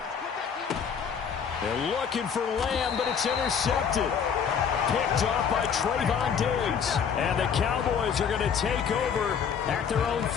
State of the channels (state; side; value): quieter; right; 7.1 dB